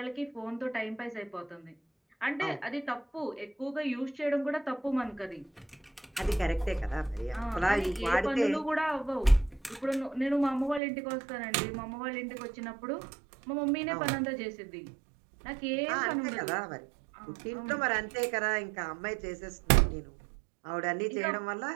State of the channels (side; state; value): left; drops out; at 10.8 s